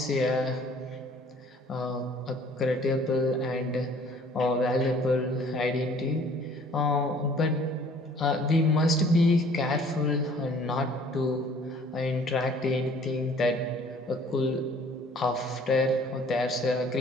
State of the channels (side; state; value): both; normal; correlation 0.55